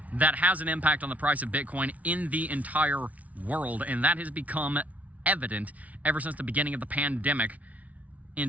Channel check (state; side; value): late; left; 0.070 ms